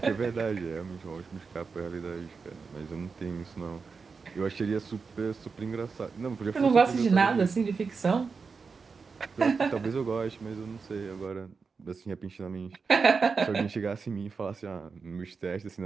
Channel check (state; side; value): quieter; left; 5.0 dB